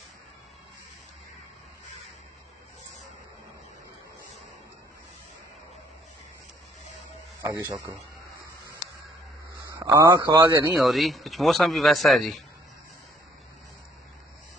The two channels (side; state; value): both; normal; correlation 0.63